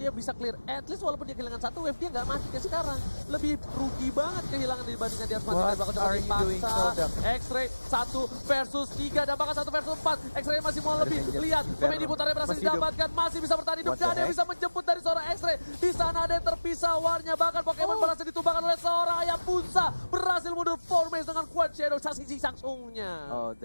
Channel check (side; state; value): both; inverted; correlation -1.00